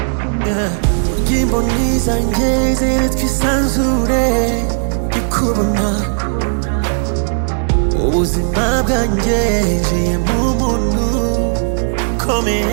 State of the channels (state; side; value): silent; left; 64 dB below the other